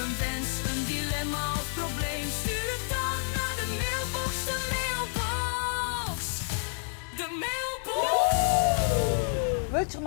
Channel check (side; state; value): right; silent; 58 dB below the other